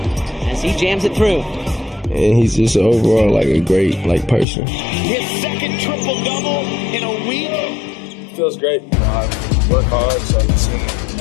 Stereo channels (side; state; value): right; drops out; at 4.5 s